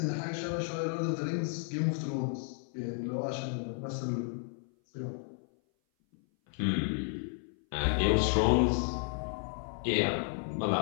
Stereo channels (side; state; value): right; silent; 56 dB below the other